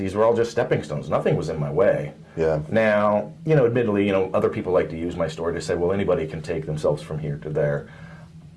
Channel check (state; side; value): identical; both; correlation 1.00